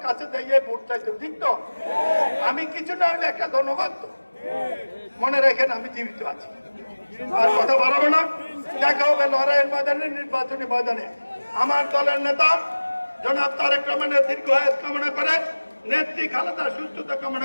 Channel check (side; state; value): both; inverted; correlation -1.00